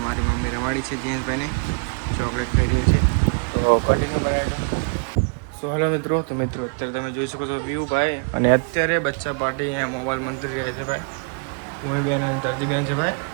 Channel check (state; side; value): quieter; left; 37.5 dB